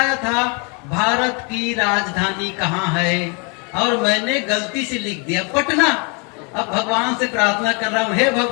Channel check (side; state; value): right; quieter; 33.9 dB